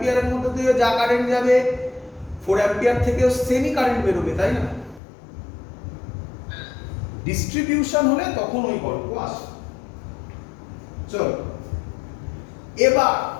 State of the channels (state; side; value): drops out; right; at 5.0 s